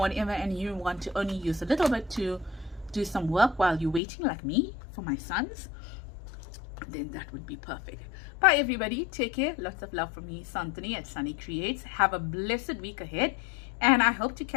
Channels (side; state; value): right; drops out; at 4.0 s